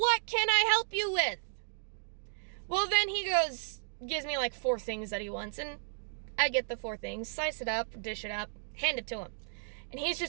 can I help you with? Well, then he gives me like 4 things that he wants, and I get the 4 things, slice it up, dish it up, hand it to him. And he's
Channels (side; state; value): left; silent; digital silence